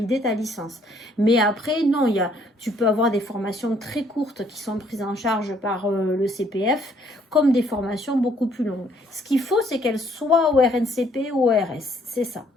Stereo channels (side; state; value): both; normal; correlation 0.65